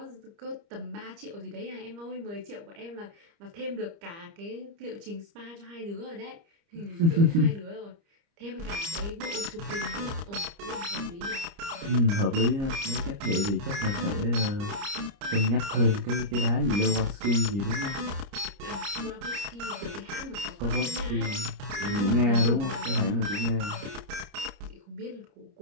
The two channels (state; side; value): late; left; 30 ms